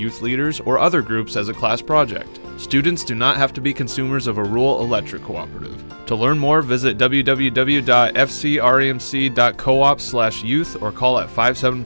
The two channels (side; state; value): both; inverted; correlation -1.00